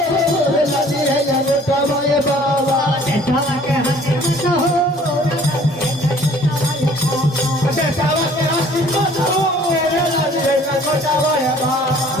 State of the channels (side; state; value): both; normal; correlation 0.54